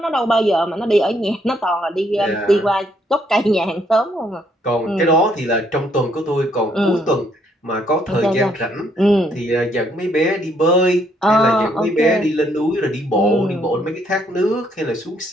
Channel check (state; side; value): normal; both; correlation 0.70